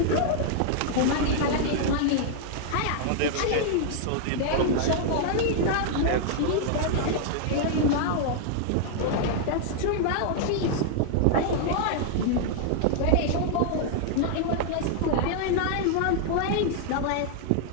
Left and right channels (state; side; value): different; both; correlation -0.01